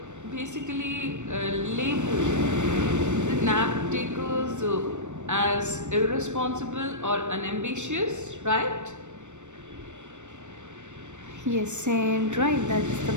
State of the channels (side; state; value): left; late; 0.84 ms